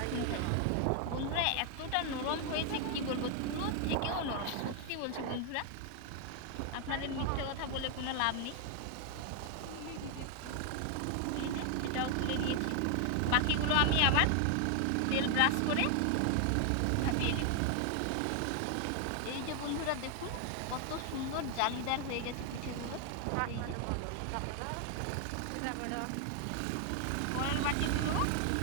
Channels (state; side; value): different; both; correlation 0.00